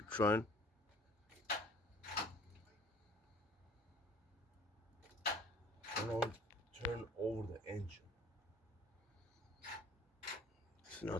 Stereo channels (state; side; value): normal; both; correlation 0.51